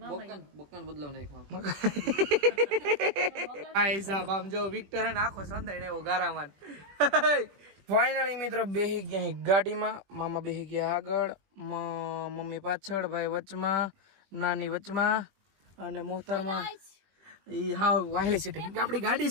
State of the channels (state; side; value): late; left; 20 ms